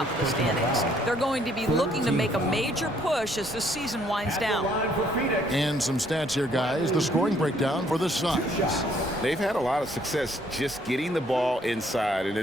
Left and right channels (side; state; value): both; normal; correlation 0.65